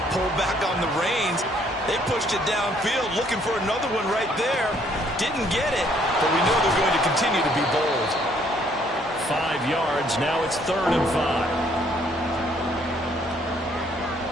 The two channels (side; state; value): both; normal; correlation 0.65